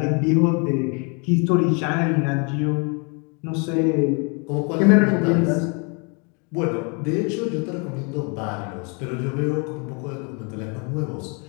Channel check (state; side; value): quieter; right; 34.6 dB